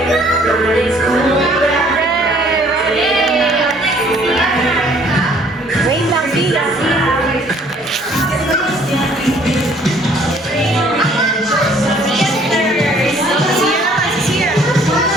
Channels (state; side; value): normal; both; correlation 0.59